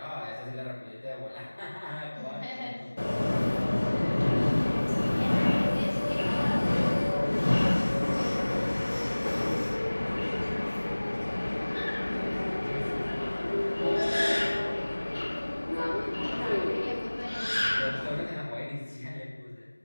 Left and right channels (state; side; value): inverted; both; correlation -1.00